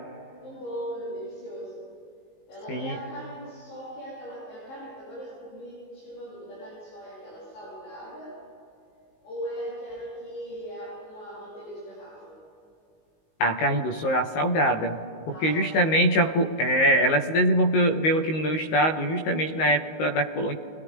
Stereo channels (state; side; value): late; right; 19 ms